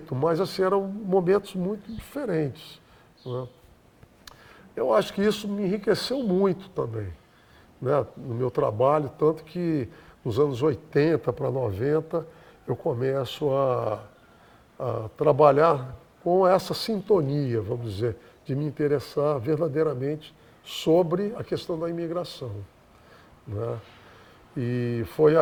mas assim, eram momentos muito diferentes. Né? Eu acho que isso me enriqueceu muito também, né, no meu trabalho, tanto que nos anos 80 para 90 eu começo a trabalhar com essa sintonia, vamos dizer, de me interessar verdadeiramente sobre a questão da imigração. Né? E foi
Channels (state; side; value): identical; both; correlation 1.00